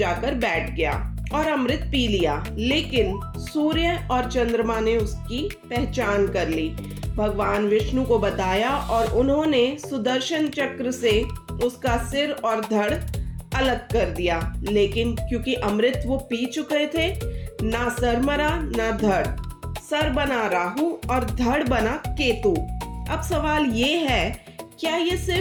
बैठ गया और अमृत पी लिया। लेकिन सूर्य और चंद्रमा ने उसकी पहचान कर ली, भगवान विष्णु को बताया और उन्होंने सुदर्शन चक्र से उसका सिर और धड़ अलग कर दिया। लेकिन क्योंकि अमृत वो पी चुके थे, ना सर मरा ना धड़। सर बना राहु और धड़ बना केतु। अब सवाल ये है, क्या ये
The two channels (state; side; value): identical; both; correlation 1.00